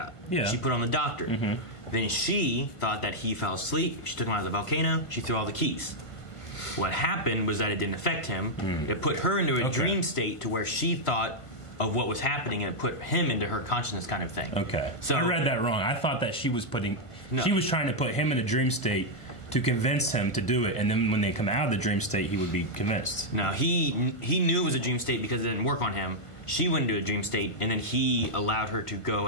Yeah. She put on the doctor. Then she thought that he fell asleep. She took him out of the volcano. She threw all the keys. What happened was that it didn't affect him. It put her into a dream state to where she thought of what was happening, and it put him into her consciousness kind of thing. Okay. So I read that wrong. I thought that she was trying to put him in a dream state to convince him to do it, and then when they come out of the dream state, he would be convinced. No, he knew it was a dream state because it didn't work on him. She went into a dream state, and then he allowed her to go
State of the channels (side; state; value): right; late; 1.5 ms